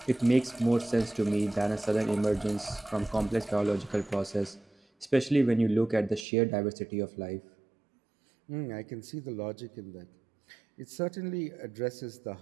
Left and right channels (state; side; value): drops out; left; at 6.2 s